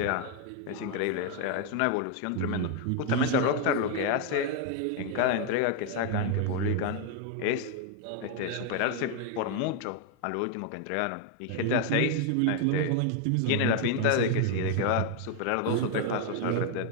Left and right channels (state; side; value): different; both; correlation 0.01